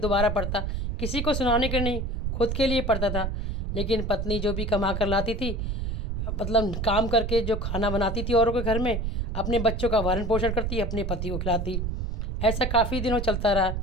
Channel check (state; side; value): noise; right; rumble, 1 dB below the sound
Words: दोबारा पढ़ता। किसी को सुनाने के नहीं, खुद के लिए पढ़ता था। लेकिन पत्नी जो भी कमा कर लाती थी, मतलब काम करके जो खाना बनाती थी औरों के घर में, अपने बच्चों का भरण पोषण करती, अपने पति को खिलाती। ऐसा काफ़ी दिनों चलता रहा।